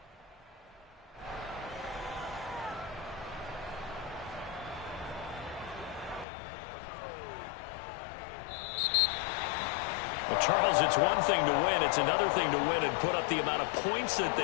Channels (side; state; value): right; drops out; at 6.2 s